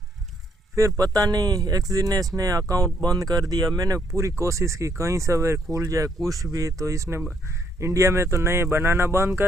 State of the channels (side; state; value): both; normal; correlation 0.71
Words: फिर पता नहीं एक्सएनएस ने अकाउंट बंद कर दिया। मैंने पूरी कोशिश की कहीं से खुल जाए कुछ भी, तो इसने इंडिया में तो नए बनाना बंद